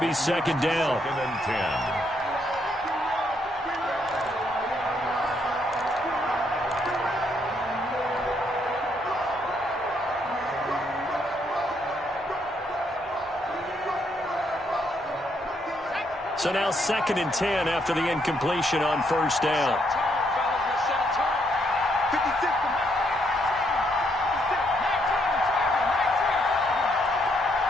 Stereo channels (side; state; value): both; normal; correlation 0.74